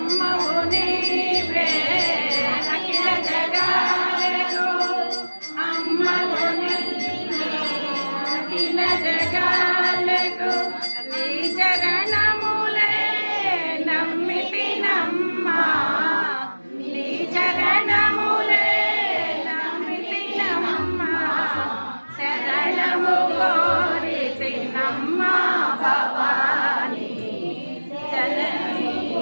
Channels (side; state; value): both; inverted; correlation -1.00